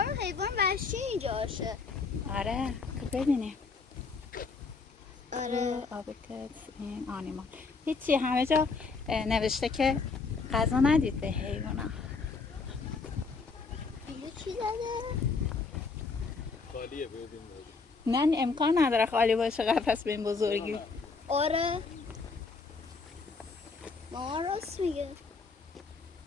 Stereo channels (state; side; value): quieter; right; 4.5 dB